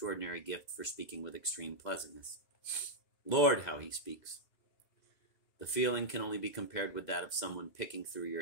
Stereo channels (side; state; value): right; late; 2.0 ms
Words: gift for speaking with extreme pleasantness. Lord, how he speaks! The feeling can only be compared with that of someone picking through